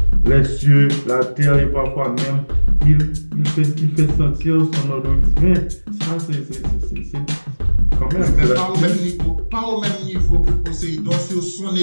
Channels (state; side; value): inverted; both; correlation -1.00